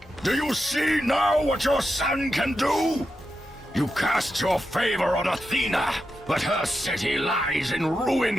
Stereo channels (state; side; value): normal; both; correlation 0.88